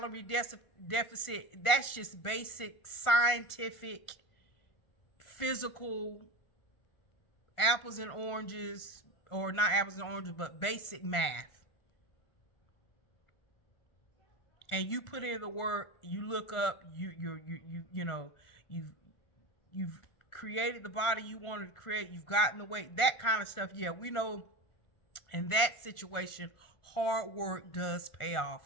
deficit. That's just basic scientific, physical, apples and oranges, or not apples and oranges, but basic math. And you put in the work, you look up, you've created the body you wanted to create, you've gotten the weight, that kind of stuff. Yeah, we know in that situation, hard work does pay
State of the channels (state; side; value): late; right; 1.4 ms